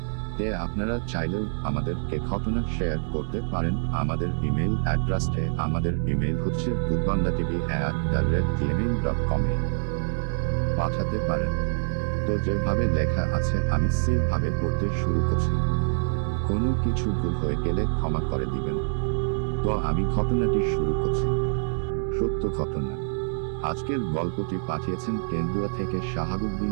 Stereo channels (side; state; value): left; silent; digital silence